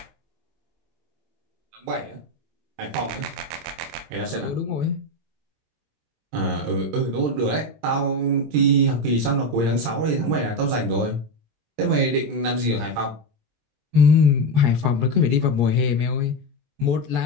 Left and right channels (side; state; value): left; late; 26 ms